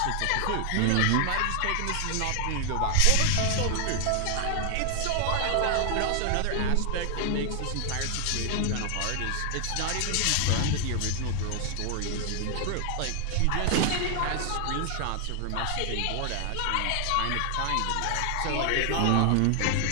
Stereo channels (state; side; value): different; both; correlation 0.00